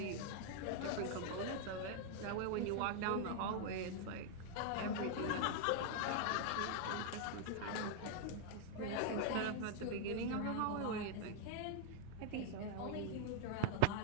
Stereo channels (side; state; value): both; different; correlation 0.00